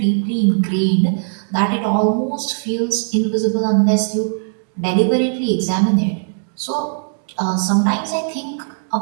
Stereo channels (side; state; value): left; silent; digital silence